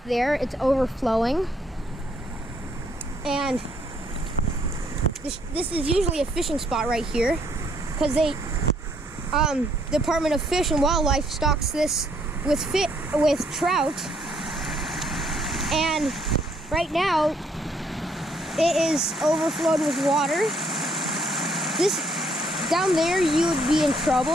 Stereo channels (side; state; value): both; normal; correlation 0.68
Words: there, it's overflowing. And this is usually a fishing spot right here because they, Department of Fish and Wildlife stocks this with trout. And right now, it is overflowed with water. This, down there, you would be in